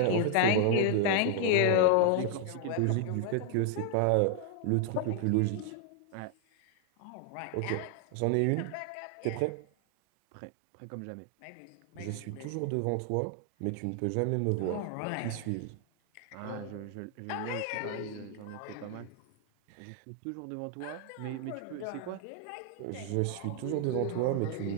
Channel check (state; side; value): different; both; correlation 0.00